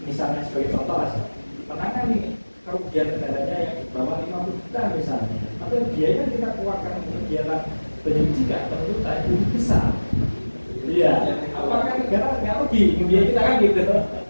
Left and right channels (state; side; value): inverted; both; correlation -1.00